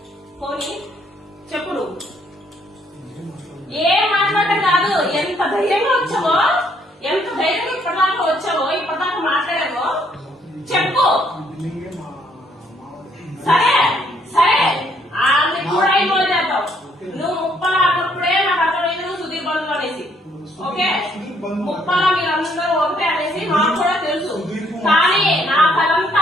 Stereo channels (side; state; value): both; normal; correlation 0.68